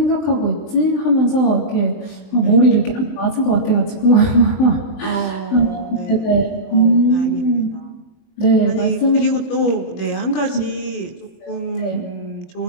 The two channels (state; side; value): late; right; 23 ms